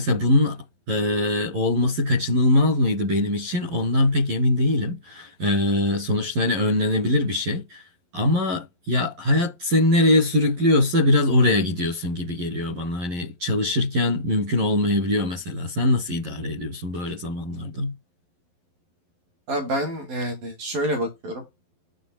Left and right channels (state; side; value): late; left; 11 ms